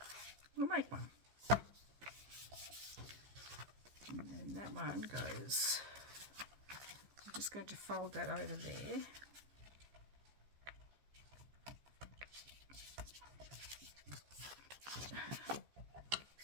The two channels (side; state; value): left; late; 15 ms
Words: We'll make one. And then that one goes, I'm just going to fold that over there.